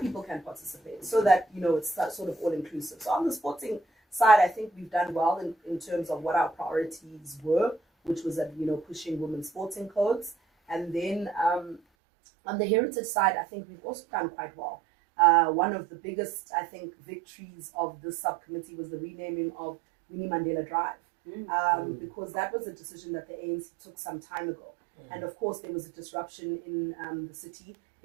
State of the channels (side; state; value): left; drops out; at 11.8 s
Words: can participate, so that, you know, it's sort of all inclusive. So on the sporting side, I think we've done well in terms of what our priorities were, which was that, you know, pushing women's sporting codes. And then on the heritage side, I think we've also done quite well. One of the biggest, I think, victories of this subcommittee was the renaming of Winnie Mandela Drive, because that was a decision that the ANC took some time ago. And of course, there was a disruption in the city